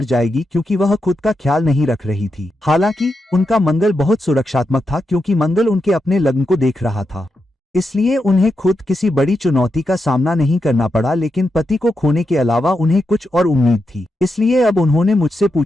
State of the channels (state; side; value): normal; both; correlation 0.86